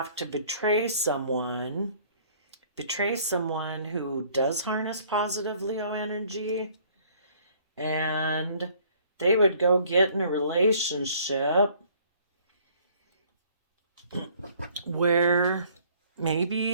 to betray someone who does harness positive Leo energy, and they would go get in a relationship where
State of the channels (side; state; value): both; inverted; correlation -0.58